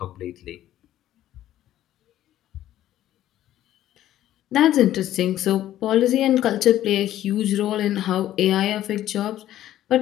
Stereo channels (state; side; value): quieter; right; 12.9 dB